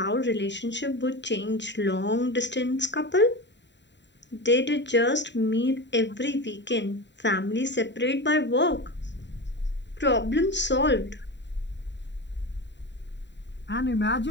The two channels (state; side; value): late; right; 0.52 ms